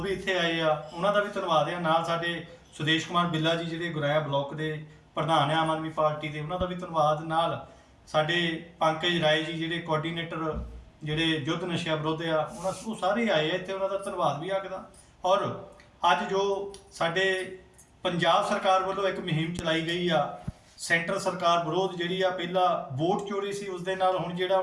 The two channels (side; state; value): both; identical; correlation 1.00